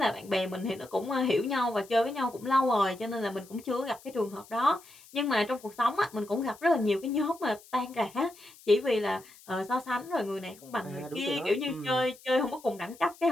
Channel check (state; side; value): noise; left; hiss, 23 dB below the sound